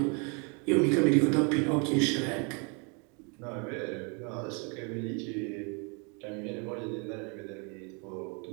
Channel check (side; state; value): left; quieter; 34.3 dB